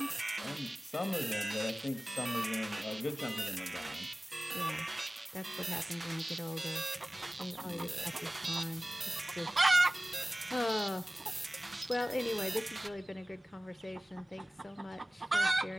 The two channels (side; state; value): both; normal; correlation 0.97